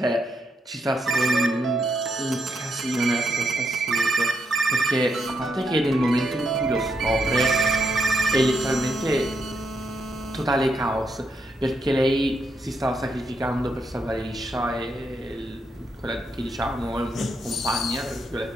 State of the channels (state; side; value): normal; both; correlation 0.80